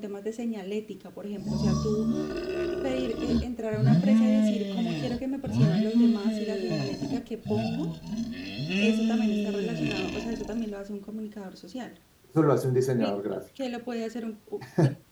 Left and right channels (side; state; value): both; identical; correlation 1.00